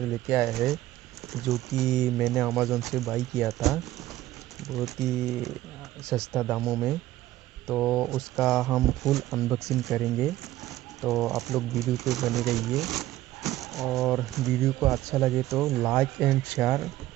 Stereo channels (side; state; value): left; quieter; 15.1 dB